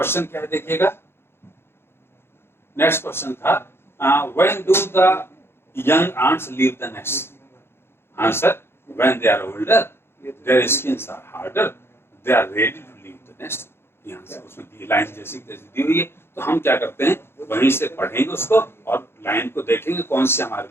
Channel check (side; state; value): right; late; 0.11 ms